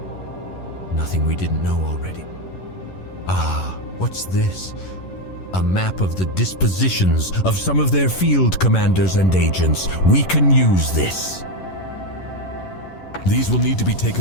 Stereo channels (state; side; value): late; right; 11 ms